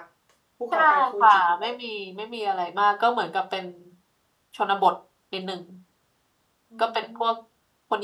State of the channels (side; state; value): both; identical; correlation 1.00